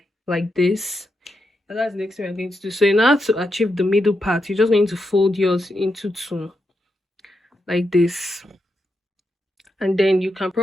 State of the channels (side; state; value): both; normal; correlation 0.85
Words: like this, and that's the next thing we're going to do. So in order to achieve the middle part, you're just going to fold yours into 2 like this, and then you can